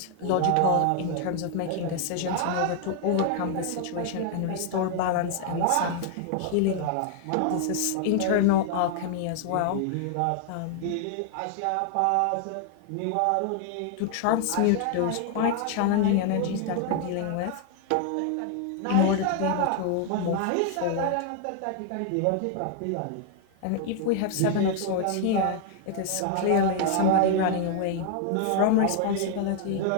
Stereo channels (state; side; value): different; both; correlation 0.00